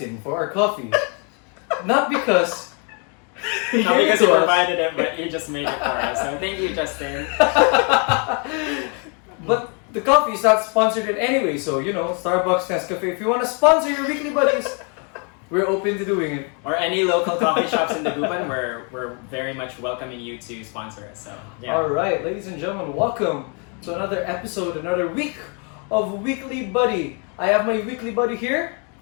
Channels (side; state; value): right; quieter; 36.6 dB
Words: for our coffee. Not because Not because he provided it, but he just made it for us. So thank you, Justin. But the coffee is not sponsored in any way, so Starbucks, Nescafe, if you want to sponsor your Weekly Buddies, we're open to doing it. Or any local coffee shops in Dagupan, we're very much welcoming you to sponsor us. So yeah. Alright, ladies and gentlemen, welcome to another episode, another week of Weekly Buddy. I have my Weekly Buddy here.